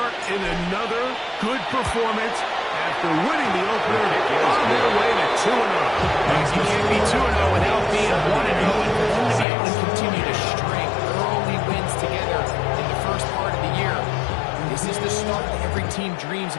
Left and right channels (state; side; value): drops out; right; at 9.5 s